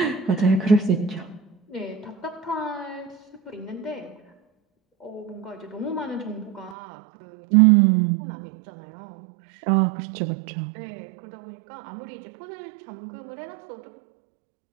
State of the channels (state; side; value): drops out; left; at 6.8 s